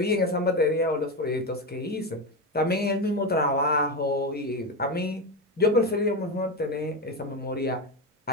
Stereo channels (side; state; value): both; normal; correlation 0.15